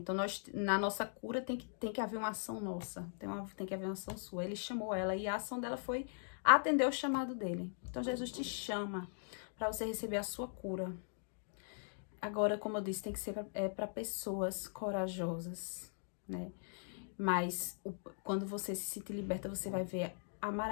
na nossa cura tem que haver uma ação nossa, tem que haver uma ação sua. Ele chamou ela e a ação dela foi atender o chamado dele. Então, Jesus te chama para você receber a sua cura. Agora, como eu disse, tem que ser para pessoas corajosas, né? Mas quando você se sentir liberta, você vai ver a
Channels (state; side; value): silent; right; digital silence